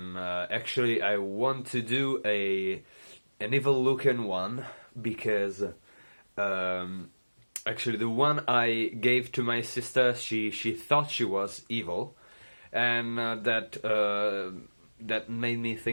actually I want to do an evil looking one because actually the one I gave to my sister, she thought she was evil, and that made me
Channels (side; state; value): both; inverted; correlation -1.00